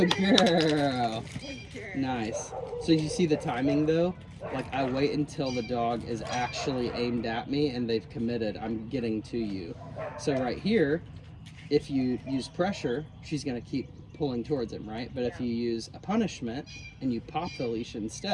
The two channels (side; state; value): both; identical; correlation 1.00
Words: girl. Nice. So you see the timing though? Like I wait until the dog is actually aimed at me and they've committed, I'm getting to you. So right here, if you use pressure, she's going to keep pulling towards him, right? But if you use a punishment and you pop the leash